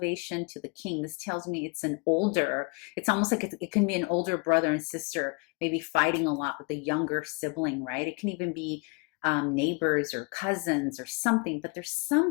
to the king, this tells me it's it's almost like it can be an older brother and sister, maybe fighting a lot with a younger sibling, right? It can even be neighbors or cousins or something, but there's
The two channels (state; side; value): quieter; right; 31.5 dB